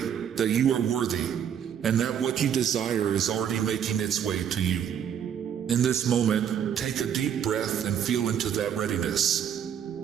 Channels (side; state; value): left; quieter; 8.8 dB